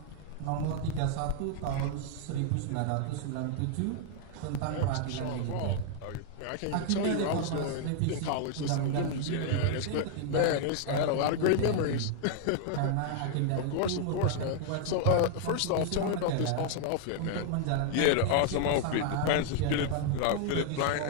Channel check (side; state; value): both; different; correlation 0.00